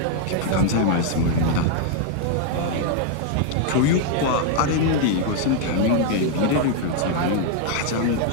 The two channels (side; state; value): both; different; correlation 0.00